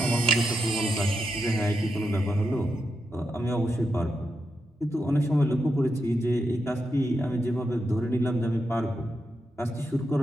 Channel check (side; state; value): both; normal; correlation 0.85